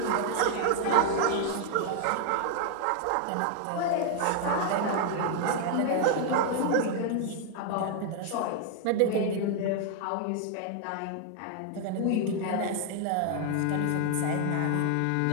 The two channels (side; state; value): both; different; correlation 0.00